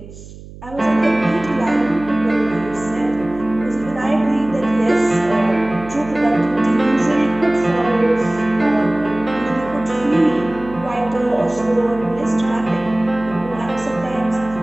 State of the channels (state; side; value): noise; right; hum, 17 dB below the sound